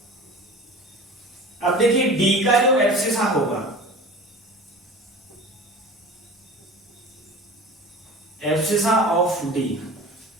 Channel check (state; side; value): normal; both; correlation 0.38